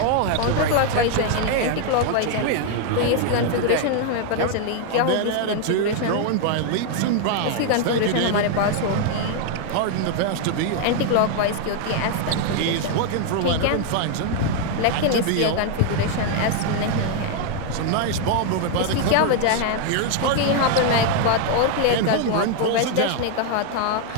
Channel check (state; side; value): different; both; correlation 0.00